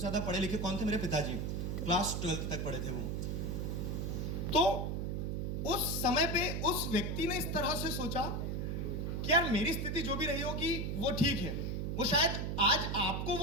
पढ़े लिखे कौन थे? मेरे पिताजी। क्लास 12 तक पढ़े थे वो। तो उस समय पे उस व्यक्ति ने इस तरह से सोचा कि यार मेरी स्थिति जो भी रही होगी वो ठीक है। वो शायद आज आपको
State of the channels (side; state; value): right; noise; hum, 1 dB below the sound